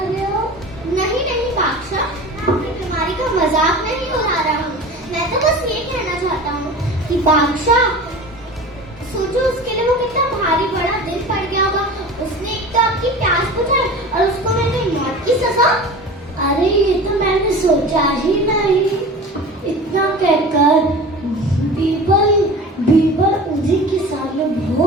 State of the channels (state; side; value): normal; both; correlation 0.36